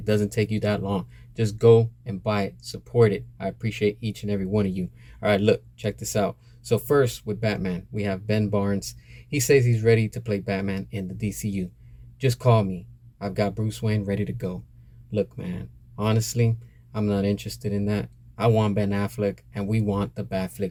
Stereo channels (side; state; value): both; identical; correlation 1.00